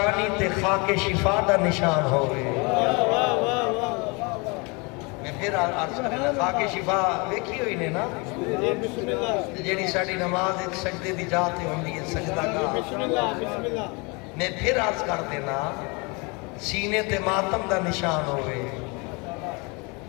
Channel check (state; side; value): quieter; right; 29.4 dB